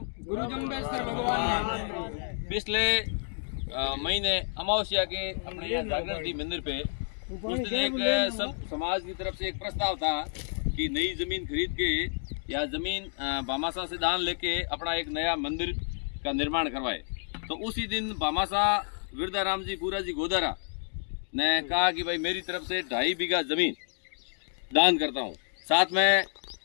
गुरु जम्बेश्वर भगवान पिछले महीने अमावस्या के अपने यहाँ जागरण थी मंदिर पे, उस दिन एक सब समाज की तरफ से एक प्रस्ताव था कि नई जमीन खरीद के या जमीन भामाशाह से दान लेके अपना एक नया मंदिर का निर्माण करवाए। तो उसी दिन भामाशाह विरदाराम जी पूरा जी गोदारा ने कहा कि भाई मेरी तरफ से 2.5 बीघा जमीन दान करता हूँ। साथ में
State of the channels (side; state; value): right; silent; digital silence